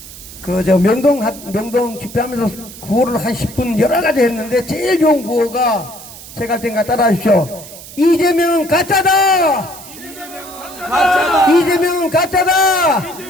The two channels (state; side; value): noise; right; hiss, 16 dB below the sound